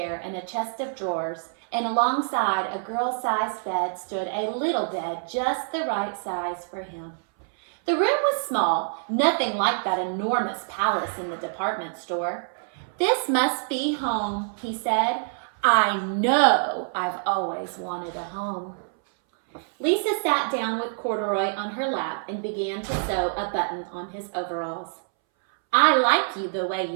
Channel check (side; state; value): left; silent; 61 dB below the other